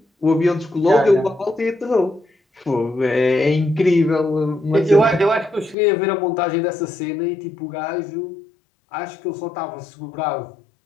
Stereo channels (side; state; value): right; drops out; at 5.8 s